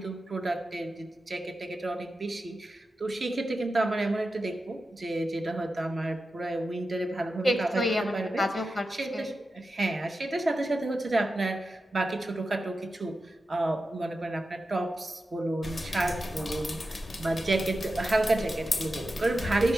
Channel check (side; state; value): both; normal; correlation 0.91